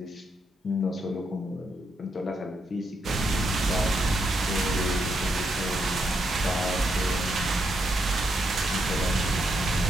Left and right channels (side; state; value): both; normal; correlation 0.80